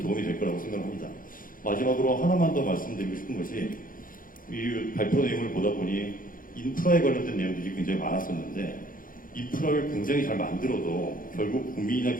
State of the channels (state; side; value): late; right; 0.40 ms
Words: 도움이 될 거라고 생각합니다. 마지막으로 하나만 더 말씀드리고 싶은 것이 이 발표 내용을 보다 보니 인프라에 관련된 내용들이 굉장히 많았었는데 인프라를 굉장히 잘 만들어도 결국 국민이나